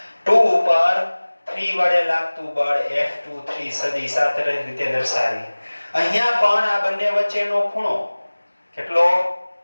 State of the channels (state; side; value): inverted; both; correlation -1.00